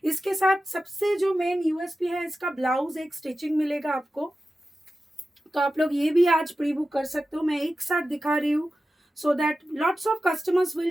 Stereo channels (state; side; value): normal; both; correlation 0.93